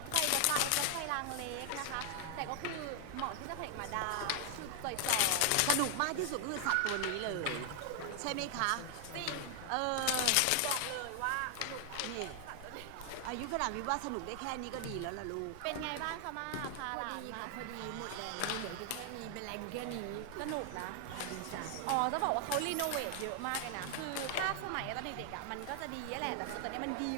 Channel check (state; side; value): different; both; correlation 0.00